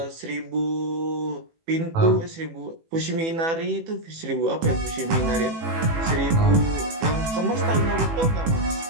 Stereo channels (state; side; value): late; left; 18 ms